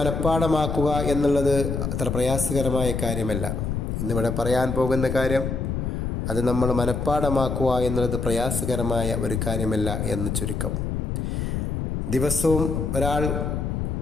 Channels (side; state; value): left; noise; rumble, 2 dB below the sound